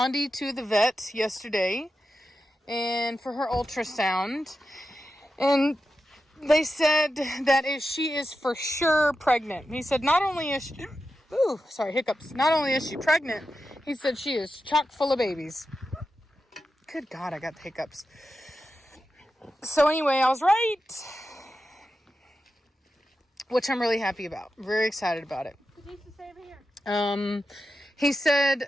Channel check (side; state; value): both; normal; correlation 0.90